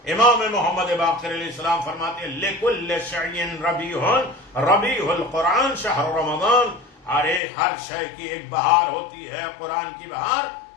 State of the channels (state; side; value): drops out; right; at 7.4 s